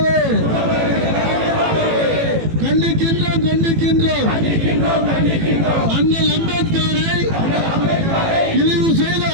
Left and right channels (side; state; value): left; late; 18 ms